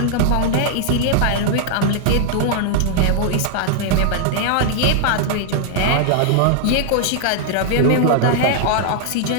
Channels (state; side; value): different; both; correlation 0.00